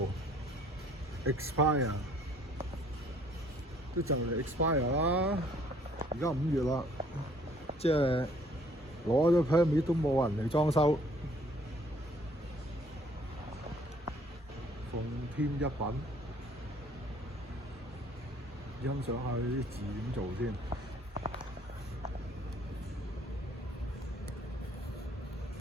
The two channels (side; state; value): both; normal; correlation 0.59